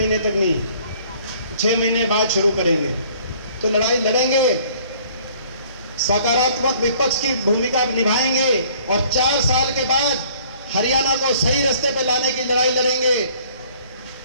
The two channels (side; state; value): both; inverted; correlation -0.57